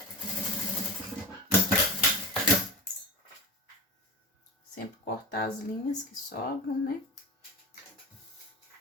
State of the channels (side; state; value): both; normal; correlation 0.28